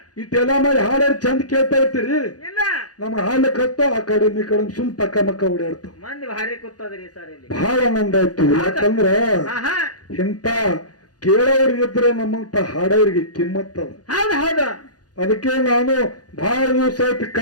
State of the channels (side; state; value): right; late; 0.68 ms